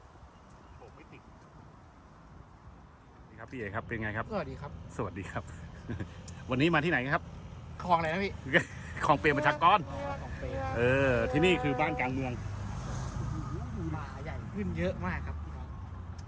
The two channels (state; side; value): identical; both; correlation 1.00